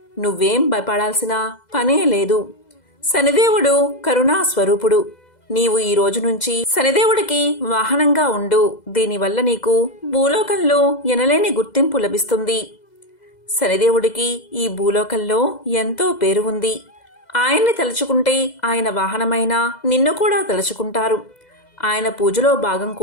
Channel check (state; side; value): late; right; 2.0 ms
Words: నువ్వేం భయపడాల్సిన పనే లేదు. శనిదేవుడు కరుణా స్వరూపుడు. నీవు ఈ రోజు నుంచి శనిదేవుడికి వాహనంగా ఉండు. దీనివల్ల నీకు భూలోకంలో ఎనలేని గుర్తింపు లభిస్తుంది. శనిదేవుడికి ఈ భూలోకంలో ఎంతో పేరు ఉంది. ఆయన్ని తలుచుకుంటే ఆయన వాహనమైన నిన్ను కూడా తలుచుకుంటారు. ఆయన పూజలో భాగం